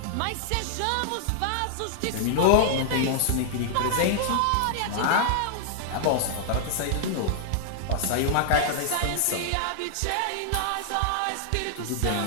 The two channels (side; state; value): both; different; correlation -0.01